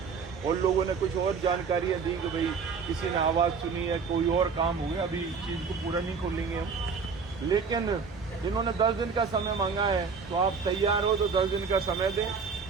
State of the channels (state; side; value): quieter; left; 5.4 dB